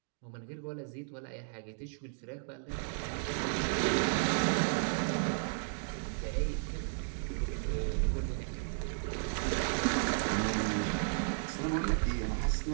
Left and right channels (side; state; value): left; silent; digital silence